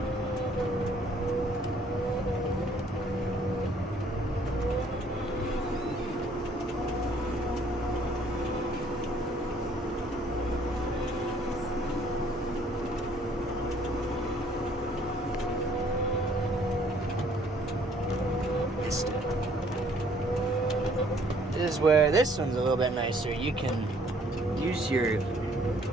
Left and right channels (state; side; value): normal; both; correlation 0.61